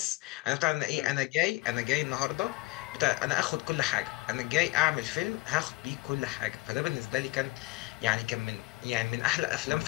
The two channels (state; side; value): quieter; right; 21.8 dB